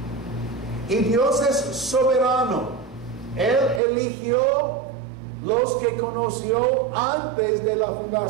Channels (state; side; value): drops out; left; at 3.8 s